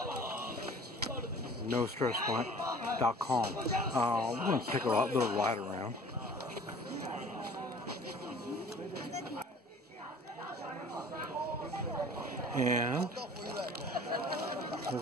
NoStressMike.com. We're going to take a little ride around. And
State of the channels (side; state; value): both; normal; correlation 0.47